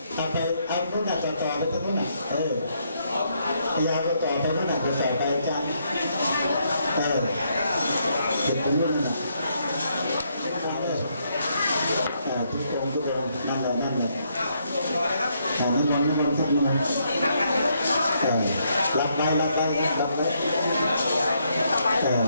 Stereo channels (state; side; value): inverted; both; correlation -0.75